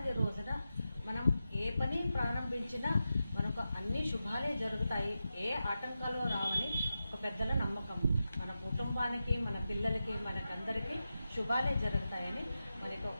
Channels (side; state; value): both; inverted; correlation -0.91